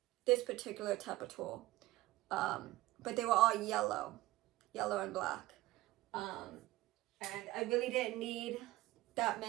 this particular type of tool, but they were all yellow and black, and I really didn't need that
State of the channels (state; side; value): quieter; left; 17.4 dB